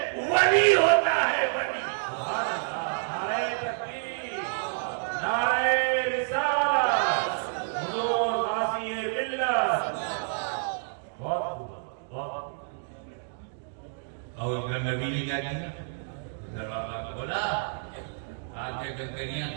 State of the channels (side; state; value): left; silent; digital silence